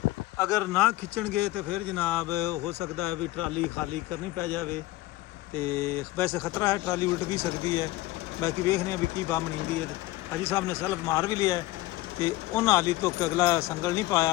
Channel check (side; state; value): right; quieter; 17.9 dB